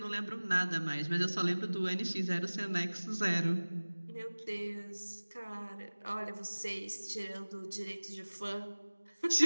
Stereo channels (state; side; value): inverted; both; correlation -1.00